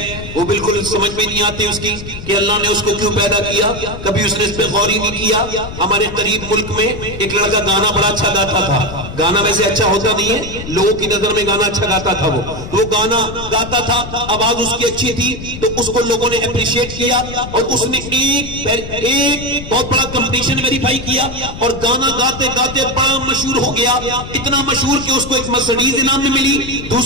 وہ بالکل سمجھ میں نہیں آتی اس کی کہ اللہ نے اس کو کیوں پیدا کیا. کبھی اس نے اس پہ غور ہی نہیں کیا. ہمارے قریب ملک میں ایک لڑکا گانا بڑا اچھا گاتا تھا. گانا ویسے اچھا ہوتا نہیں ہے، لوگوں کی نظر میں گانا اچھا گاتا تھا. وہ گانا گاتا تھا، آواز اس کی اچھی تھی، تو اس کو لوگوں نے اپریشیٹ کیا اور اس نے ایک بہت بڑا کمپٹیشن ویریفائی کیا اور گانا گاتے گاتے بڑا مشہور ہو گیا. اتنا مشہور کہ اس کو ایک مرسڈیز انعام میں ملی،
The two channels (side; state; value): left; noise; rumble, 11 dB below the sound